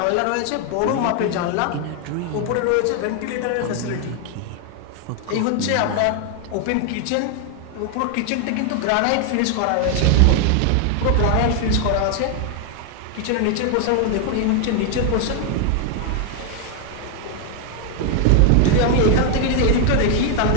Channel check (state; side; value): different; both; correlation 0.00